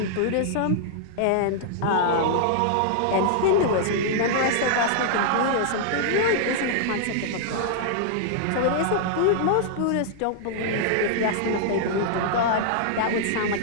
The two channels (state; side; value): different; both; correlation -0.01